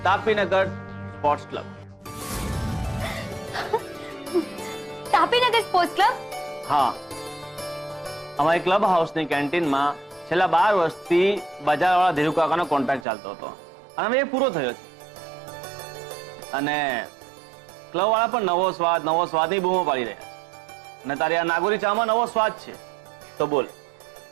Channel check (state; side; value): drops out; left; at 13.1 s